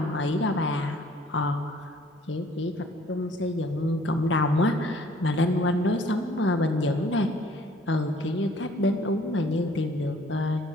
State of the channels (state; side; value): normal; both; correlation 0.57